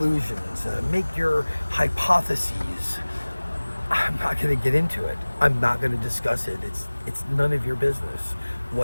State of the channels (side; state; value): both; inverted; correlation -1.00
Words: make your hypotheses. I'm not going to get into it. I'm not going to discuss it. It's none of your business.